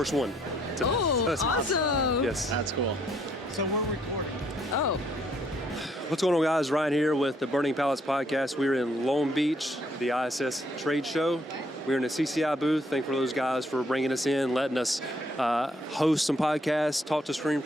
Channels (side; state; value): both; normal; correlation 0.68